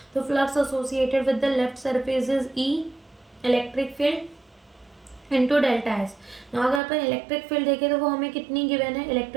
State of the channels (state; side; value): drops out; left; at 6.8 s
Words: तो flux associated with the left surface is E electric field into delta S. ना अगर अपन इलेक्ट्रिक फील्ड देखें तो वो हमें कितनी गिवन है,